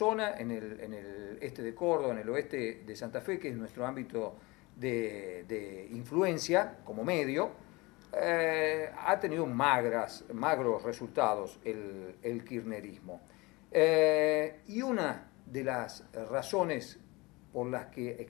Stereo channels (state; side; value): quieter; right; 23.9 dB